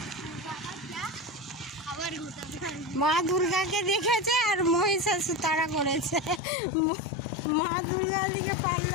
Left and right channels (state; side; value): drops out; right; at 6.4 s